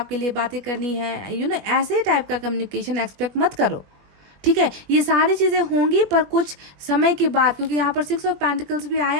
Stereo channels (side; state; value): left; late; 21 ms